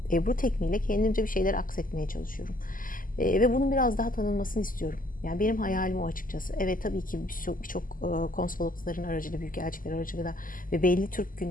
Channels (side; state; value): right; late; 0.40 ms